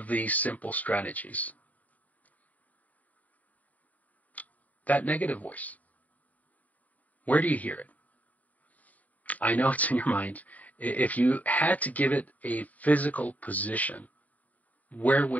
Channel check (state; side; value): late; right; 0.074 ms